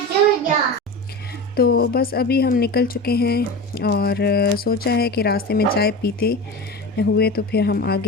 Julia. तो बस अभी हम निकल चुके हैं और सोचा है कि रास्ते में चाय पीते हुए तो फिर हम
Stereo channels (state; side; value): normal; both; correlation 0.28